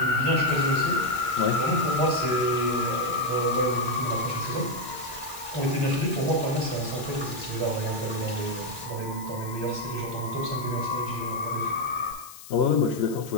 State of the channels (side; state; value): left; noise; hiss, 16 dB below the sound